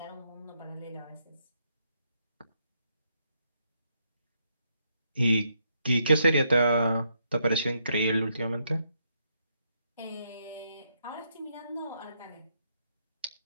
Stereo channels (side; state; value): both; inverted; correlation -0.77